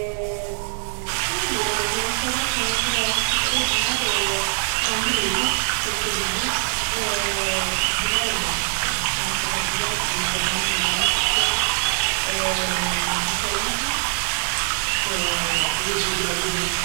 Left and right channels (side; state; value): left; silent; digital silence